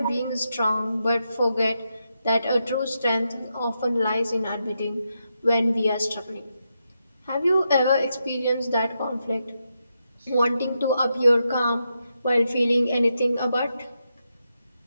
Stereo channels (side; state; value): both; inverted; correlation -0.85